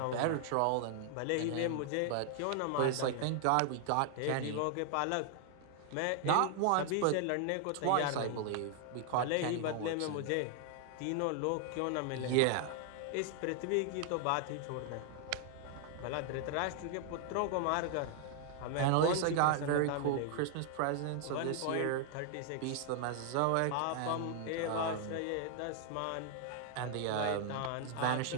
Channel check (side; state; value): both; different; correlation 0.00